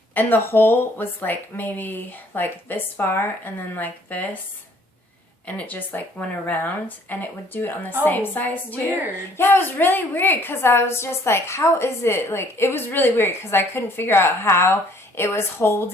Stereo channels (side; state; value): both; normal; correlation 0.60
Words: hole was, like, maybe, like, this far, and then, like, this, and it just, like, went around, and it would do it on the same size, too. Weird. Yeah, it was really weird, because I was just, like, how is it, like, it was really weird, because I couldn't figure out how it was